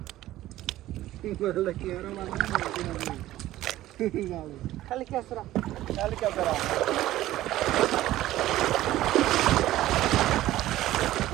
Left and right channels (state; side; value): quieter; left; 15.0 dB